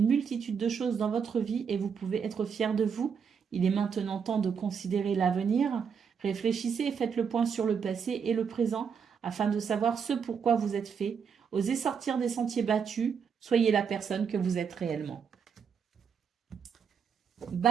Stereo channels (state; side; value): quieter; left; 6.7 dB